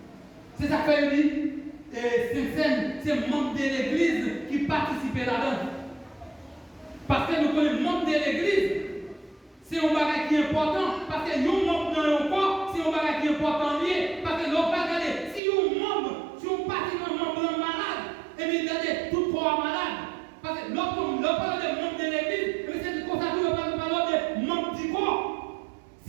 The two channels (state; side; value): drops out; left; at 15.4 s